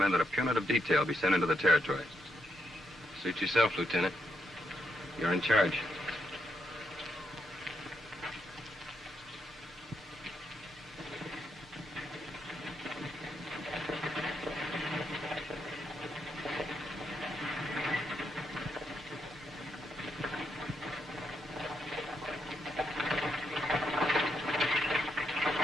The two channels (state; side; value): normal; both; correlation 0.79